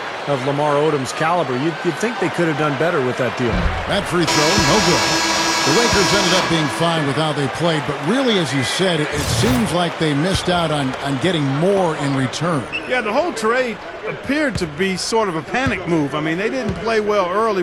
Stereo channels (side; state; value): both; identical; correlation 1.00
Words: of Lamar Odom's caliber. You'd think they could have done better with that deal. That free throw, no good. The Lakers ended up being fine with how they played, but really, as you said, it seems like they missed out on getting more in return. Yeah, the whole trade appeared to be sort of a panic move. I mean, they didn't play well early,